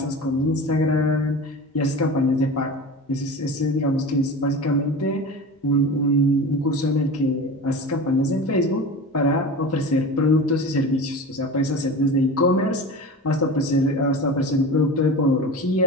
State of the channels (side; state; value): both; normal; correlation 0.32